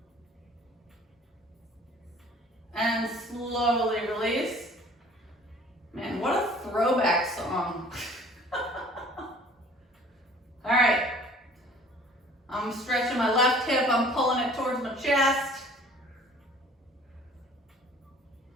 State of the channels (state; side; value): normal; both; correlation 0.51